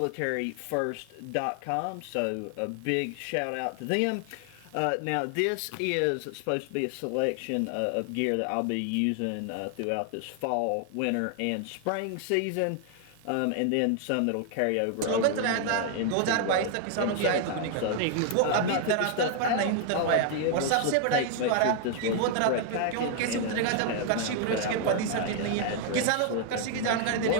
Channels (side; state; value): both; different; correlation 0.00